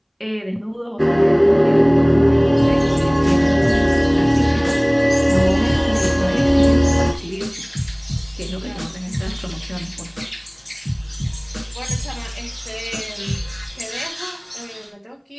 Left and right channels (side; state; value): both; identical; correlation 1.00